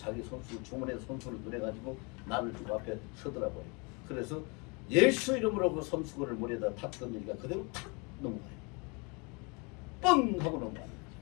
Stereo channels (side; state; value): right; quieter; 30.8 dB